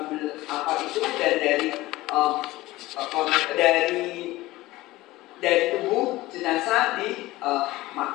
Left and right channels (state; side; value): quieter; right; 18.4 dB